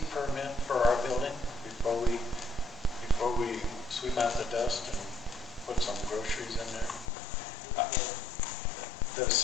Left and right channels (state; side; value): drops out; right; at 7.1 s